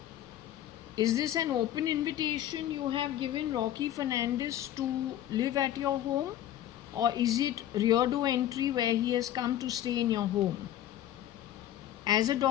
this an open invitation you have given Rocky Fernandez to live at your home, or is it rear door entry where he has come to stay in your home? As a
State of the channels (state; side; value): quieter; right; 12.0 dB